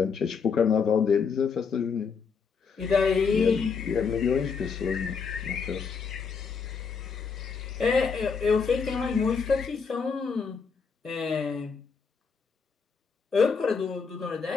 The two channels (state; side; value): quieter; right; 5.6 dB